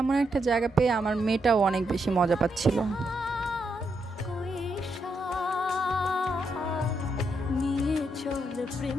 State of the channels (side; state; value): both; normal; correlation 0.80